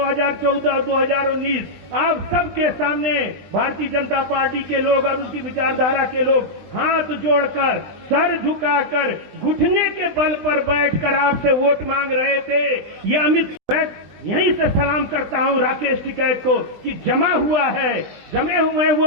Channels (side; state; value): left; late; 20 ms